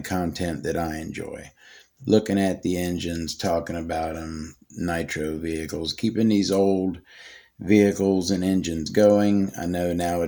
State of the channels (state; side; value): identical; both; correlation 1.00